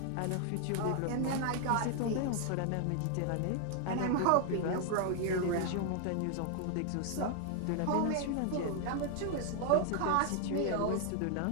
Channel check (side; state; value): both; different; correlation 0.00